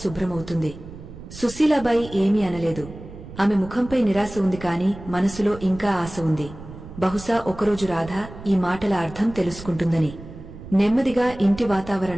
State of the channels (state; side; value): noise; right; rumble, 15 dB below the sound